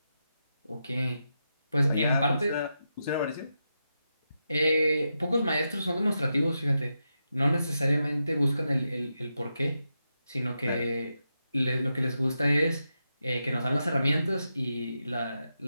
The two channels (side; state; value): both; inverted; correlation -0.87